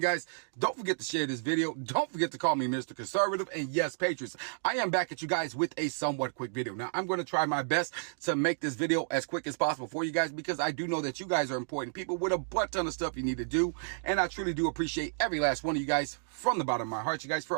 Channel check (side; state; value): left; silent; digital silence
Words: guys, don't forget to share this video. Don't forget to call me Mr. Conservative, and yes, patriots, I am back at you guys with a somewhat quick video. Now, I'm going to try my best to make this video as quick as possible for you guys because I do know that you guys are important people with a butt ton of stuff you need to do, and I truly do appreciate every last one of you guys from the bottom of my heart, you guys,